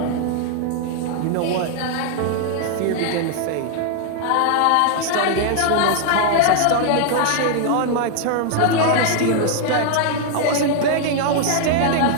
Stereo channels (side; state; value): both; different; correlation 0.00